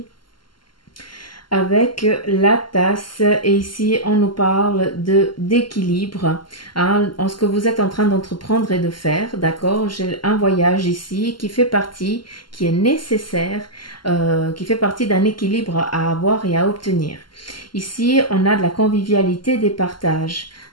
avec la tasse, et ici on nous parle de d'équilibre, hein, en ce que vous êtes en train d'entreprendre et de faire, d'accord. J'ai un voyage ici qui fait partie, qui est nécessaire, qui fait partie d'un équilibre à avoir et à obtenir. Ici on a de la convivialité, des partages.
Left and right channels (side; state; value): right; late; 0.72 ms